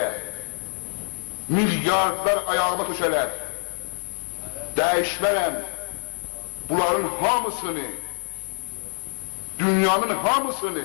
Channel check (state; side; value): silent; right; 62 dB below the other